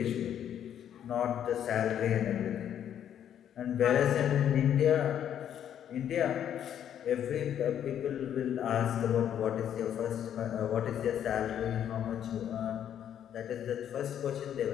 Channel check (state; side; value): quieter; right; 9.8 dB